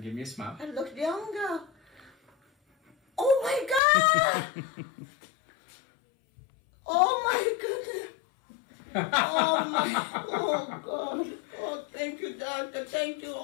give me a smile. I look younger. Oh my God! Oh my goodness! Oh God! Oh, thank you, doctor. Thank you,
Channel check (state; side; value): drops out; right; at 3.8 s